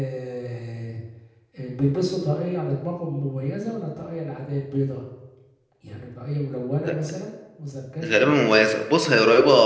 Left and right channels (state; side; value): identical; both; correlation 1.00